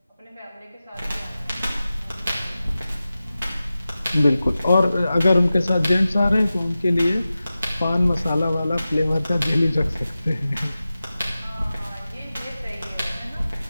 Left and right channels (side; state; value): both; inverted; correlation -0.95